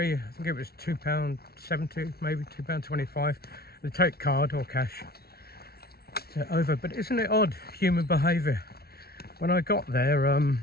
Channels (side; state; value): right; late; 0.45 ms